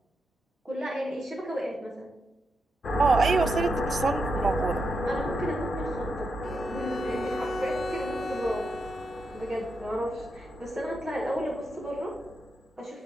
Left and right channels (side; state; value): both; normal; correlation 0.84